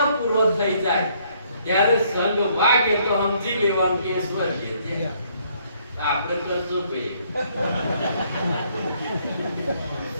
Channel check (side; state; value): both; inverted; correlation -0.67